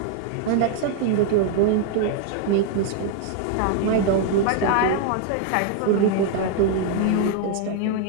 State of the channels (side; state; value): both; different; correlation 0.00